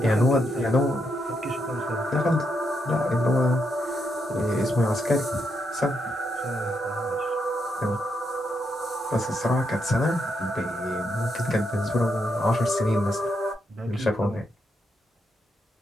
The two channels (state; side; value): normal; both; correlation 0.80